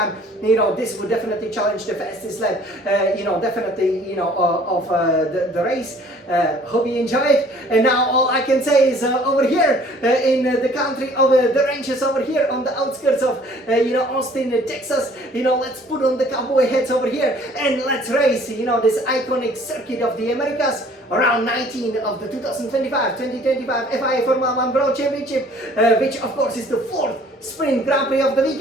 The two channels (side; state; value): both; normal; correlation 0.55